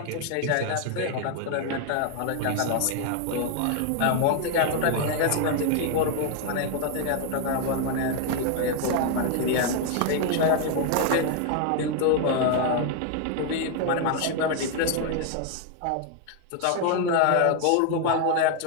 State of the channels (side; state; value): both; different; correlation 0.00